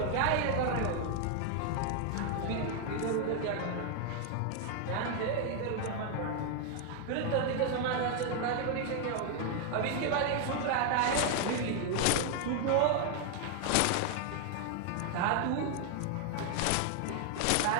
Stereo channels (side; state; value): both; different; correlation 0.00